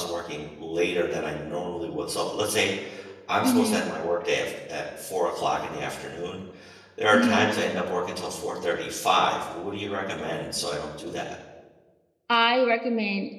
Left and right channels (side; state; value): both; identical; correlation 1.00